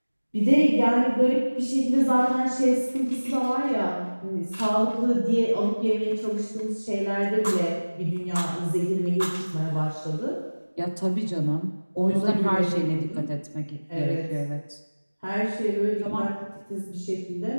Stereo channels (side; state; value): both; inverted; correlation -1.00